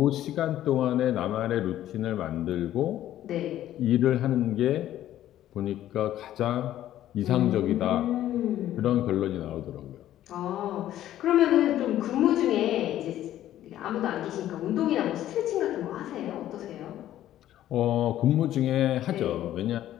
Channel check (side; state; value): right; quieter; 12.7 dB